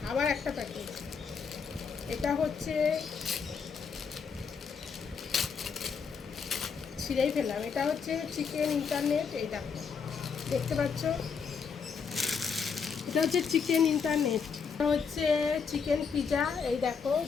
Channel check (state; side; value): quieter; right; 6.0 dB